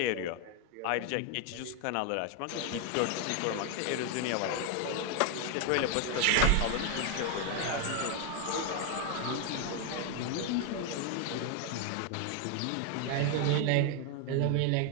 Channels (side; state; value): both; different; correlation 0.01